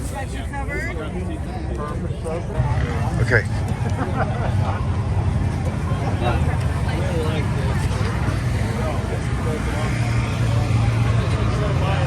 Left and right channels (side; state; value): both; identical; correlation 1.00